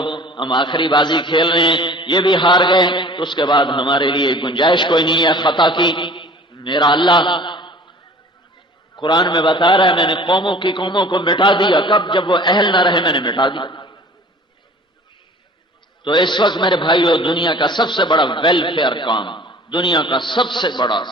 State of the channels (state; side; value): normal; both; correlation 0.46